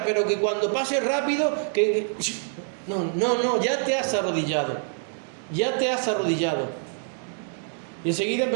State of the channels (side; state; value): left; silent; digital silence